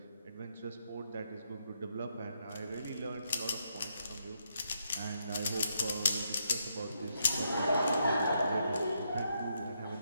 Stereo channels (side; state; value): both; inverted; correlation -0.78